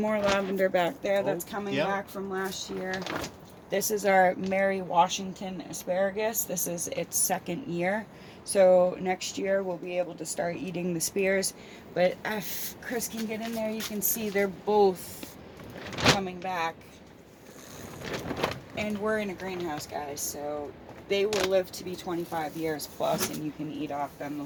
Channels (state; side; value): identical; both; correlation 1.00